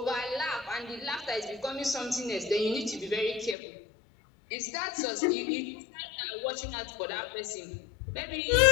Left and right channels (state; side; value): drops out; right; at 3.6 s